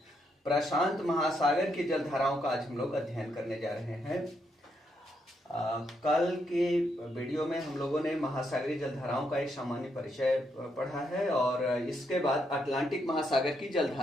प्रशांत महासागर की जलधाराओं का आज हम लोग अध्ययन करने जा रहे हैं। कल के वीडियो में हम लोगों ने महासागरीय जलधाराओं का एक सामान्य परिचय पढ़ा है और इसके बाद अटलांटिक महासागर की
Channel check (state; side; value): normal; both; correlation 0.78